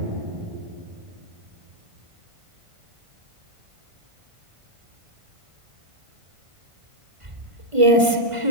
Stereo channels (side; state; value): left; late; 1.5 ms